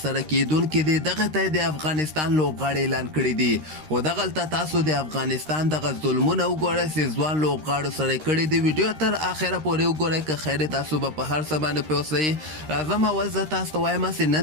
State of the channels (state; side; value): late; left; 13 ms